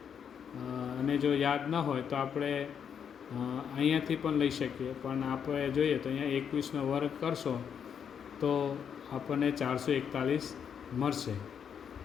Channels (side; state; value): right; quieter; 7.7 dB